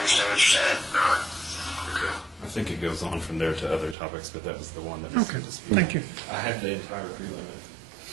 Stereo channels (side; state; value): left; drops out; at 4.0 s